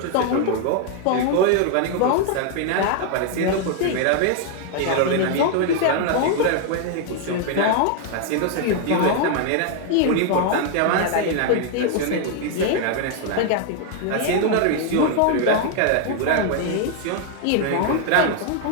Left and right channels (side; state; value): both; different; correlation 0.00